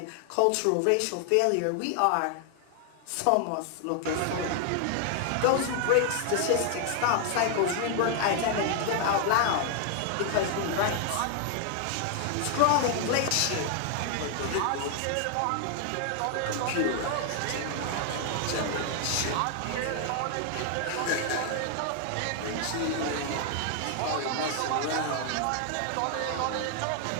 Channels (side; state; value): both; different; correlation 0.00